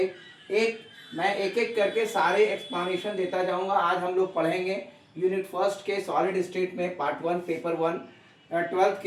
मैं एक एक करके सारे एक्सप्लेनेशन देता जाऊंगा. आज हम लोग पढ़ेंगे यूनिट फर्स्ट के सॉलिड स्टेट में पार्ट 1 पेपर 1 12th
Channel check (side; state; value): both; identical; correlation 1.00